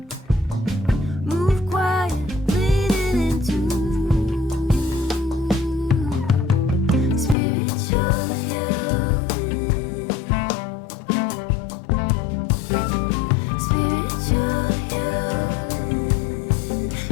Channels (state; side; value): drops out; right; at 7.4 s